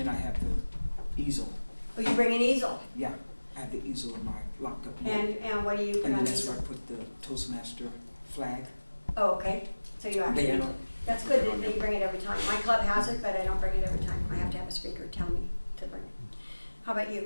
I have the easel. Oh, you bring an easel? Yeah, I have the easel in my locked up And, note. and what do you put And on then the that's easel? where I put the Toastmaster flag. Oh, okay. So you actually, Banner. that's good that you bring it every time. My club has it, but I don't bring it every time. I have to have a speaker tell me to bring it. How about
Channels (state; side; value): inverted; both; correlation -1.00